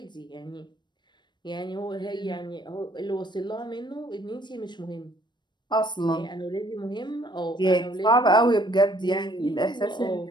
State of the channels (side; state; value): right; late; 0.22 ms